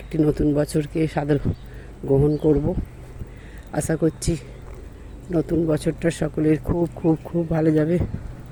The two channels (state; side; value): identical; both; correlation 1.00